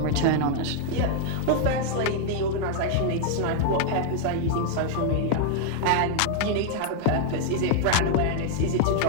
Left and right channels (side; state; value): both; different; correlation 0.00